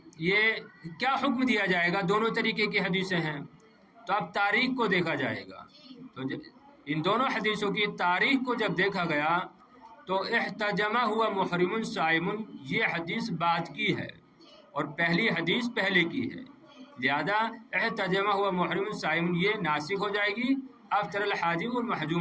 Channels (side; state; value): both; identical; correlation 1.00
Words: یہ کیا حکم دیا جائے گا؟ دونوں طریقے کی حدیثیں ہیں. تو اب تاریخ کو دیکھا جائے گا. تو ان دونوں حدیثوں کی تاریخ کو جب دیکھا گیا تو احتجمہ ہوا محرم صائم، یہ حدیث بعد کی ہے اور پہلی حدیث پہلے کی ہے. لہذا احتجمہ ہوا محرم صائم یہ ناسخ ہو جائے گی افطر الحاجم